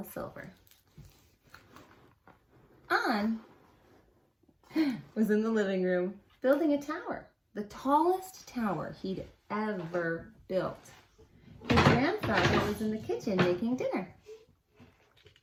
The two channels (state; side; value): identical; both; correlation 1.00